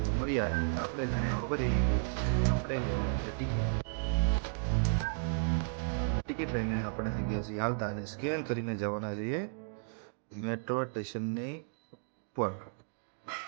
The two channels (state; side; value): silent; left; digital silence